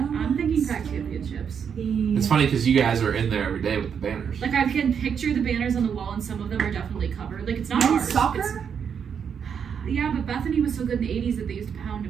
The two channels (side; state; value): left; quieter; 7.3 dB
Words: thinking Pac championships. It's funny because you guys are in there every day with the banners. Like I can picture the banners on the wall, and some of them are definitely covered. Like it's not Men's ours. soccer? Yeah, but Bethany was so good in the 80s that they used to pound